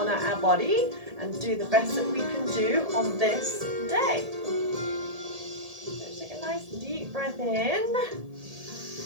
our body and do the best that we can do on this day. So take a nice deep breath in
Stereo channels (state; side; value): late; left; 1.7 ms